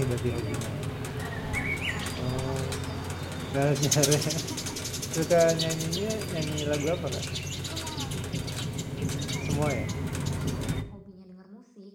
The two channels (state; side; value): identical; both; correlation 1.00